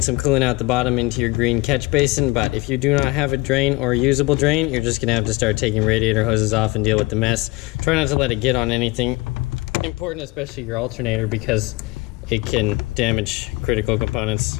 coolant out the bottom into your green catch basin, but if you do not have a drain or a usable drain, you're just gonna have to start taking radiator hoses off and deal with the mess. Try not to let it get on anything important, especially your alternator, because it can damage critical components.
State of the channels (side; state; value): right; quieter; 22.8 dB